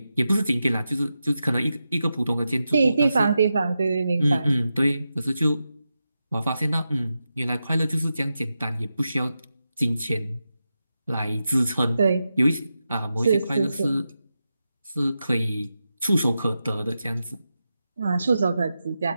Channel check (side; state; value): both; inverted; correlation -0.90